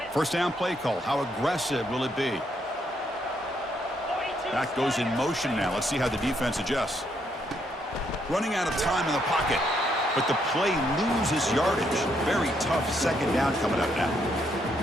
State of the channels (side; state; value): both; normal; correlation 0.74